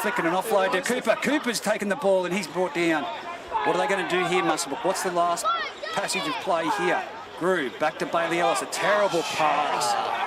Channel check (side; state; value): both; identical; correlation 1.00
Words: and an offload to Cooper. Cooper's taken the ball and he's brought down. What are they going to do here, Muswellbrook? What's the last passage of play here? Grew back to Bailey Ellis. A terrible